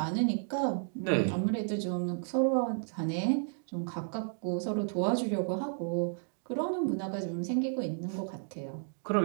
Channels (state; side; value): silent; left; digital silence